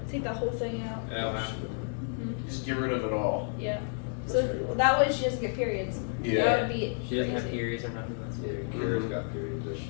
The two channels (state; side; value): silent; right; 57 dB below the other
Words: Take that whole thing out. Just get rid of it all. Yeah. So that way she doesn't get periods. Yeah. That would be She doesn't have crazy. periods or nothing. That's Yeah, weird. Kira's got periods. That